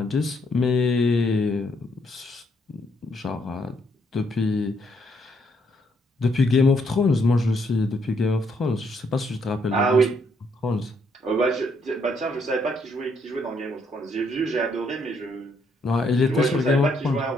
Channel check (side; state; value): both; normal; correlation 0.72